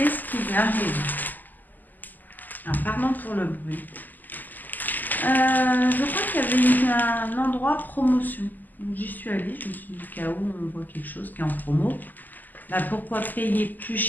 qui lui arrive? Alors, pardon pour le bruit. Je crois qu'il y avait un endroit promotion. Donc, j'y suis allée, je me suis dit, au cas où on voit quelque chose qui est en promo, bah, pourquoi payer plus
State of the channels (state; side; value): late; right; 0.085 ms